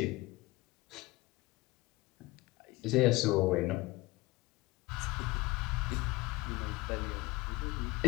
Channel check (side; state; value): right; quieter; 20.4 dB